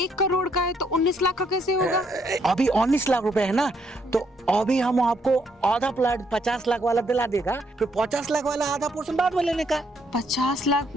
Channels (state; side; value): normal; both; correlation 0.72